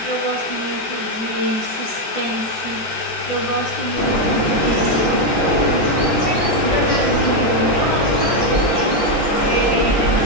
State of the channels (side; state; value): right; late; 12 ms